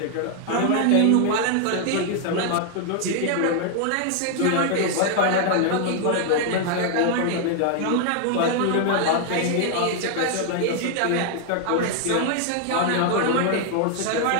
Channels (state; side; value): different; both; correlation 0.00